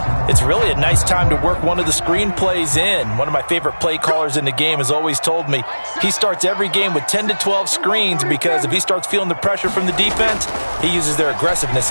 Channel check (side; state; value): both; inverted; correlation -1.00